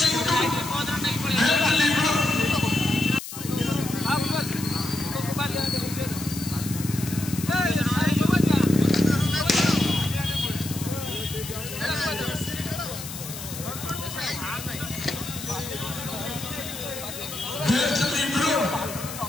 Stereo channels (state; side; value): noise; left; hiss, 10 dB below the sound